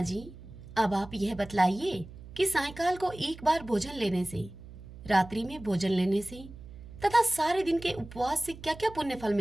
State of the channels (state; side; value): noise; right; hum, 16 dB below the sound